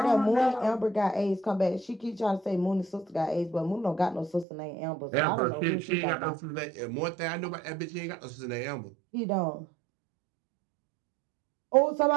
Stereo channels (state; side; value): drops out; left; at 4.5 s